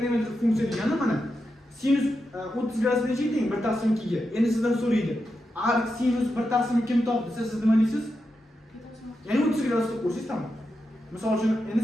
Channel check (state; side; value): normal; both; correlation 0.87